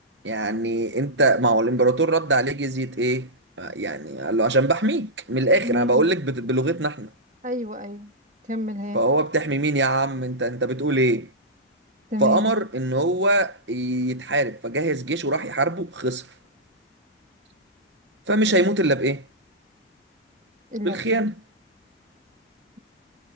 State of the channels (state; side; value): normal; both; correlation -0.10